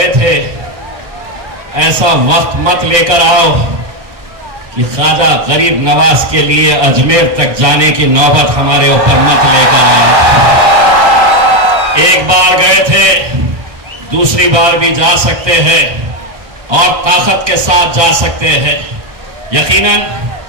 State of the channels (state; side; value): late; left; 1.6 ms